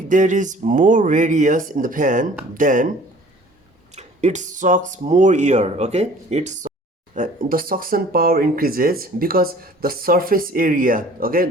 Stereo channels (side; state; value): both; normal; correlation 0.50